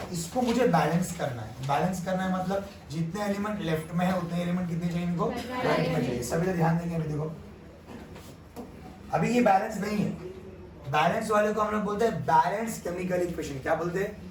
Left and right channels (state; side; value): identical; both; correlation 1.00